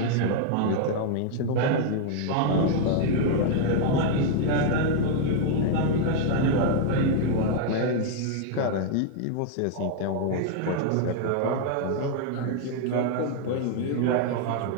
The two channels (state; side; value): different; both; correlation 0.00